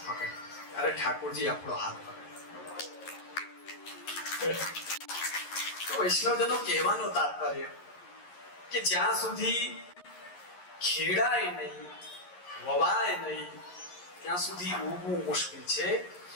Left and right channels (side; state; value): right; late; 11 ms